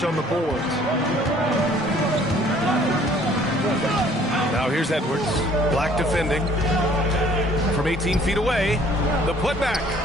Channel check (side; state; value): both; normal; correlation 0.57